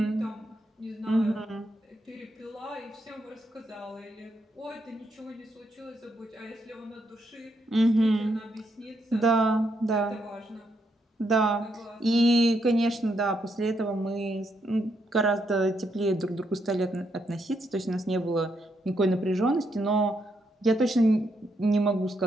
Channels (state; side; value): normal; both; correlation 0.78